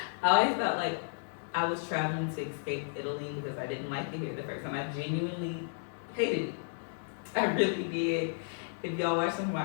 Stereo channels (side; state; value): right; silent; digital silence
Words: I always felt like I was traveling to escape Italy because I didn't like it here the first time. I genuinely hated it. I really did. If y'all watch some of